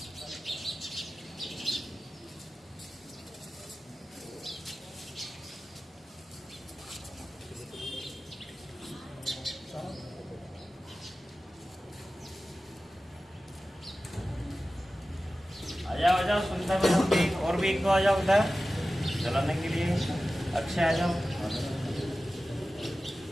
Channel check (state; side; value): normal; both; correlation 0.95